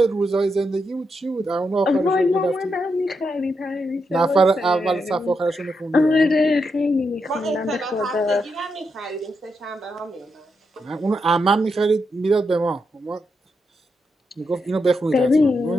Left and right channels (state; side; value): normal; both; correlation 0.83